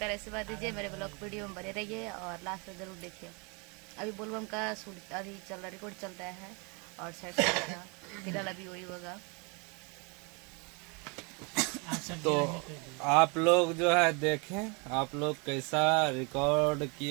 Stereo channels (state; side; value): quieter; left; 31.7 dB